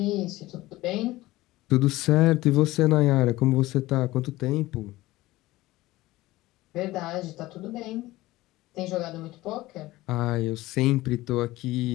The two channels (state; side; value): quieter; right; 18.0 dB